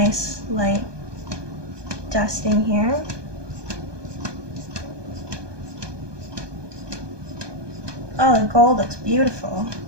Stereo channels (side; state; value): left; late; 1.2 ms